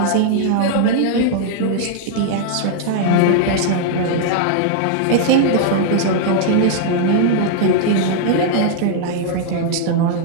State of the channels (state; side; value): different; both; correlation 0.00